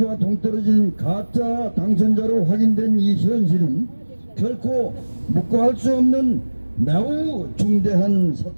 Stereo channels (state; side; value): inverted; both; correlation -1.00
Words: 동떨어진 가짜 당선자로 확인된 이 현실은 결코 묵과할 수 없는 매우 중대한